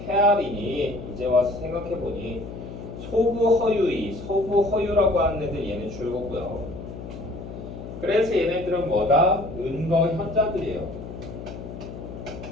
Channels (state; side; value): noise; left; hum, 11 dB below the sound